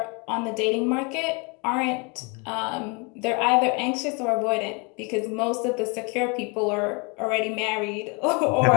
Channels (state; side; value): quieter; right; 31.8 dB